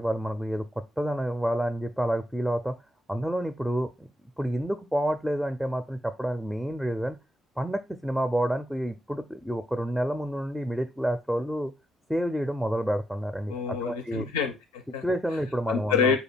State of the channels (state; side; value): normal; both; correlation 0.80